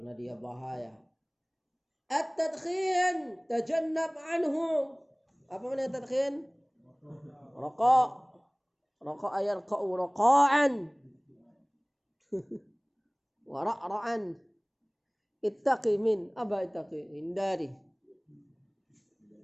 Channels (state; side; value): identical; both; correlation 1.00